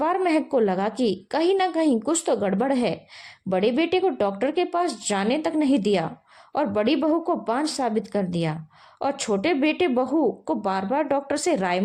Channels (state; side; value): identical; both; correlation 1.00